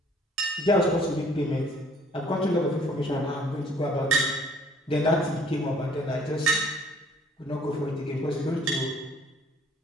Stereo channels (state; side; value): normal; both; correlation 0.57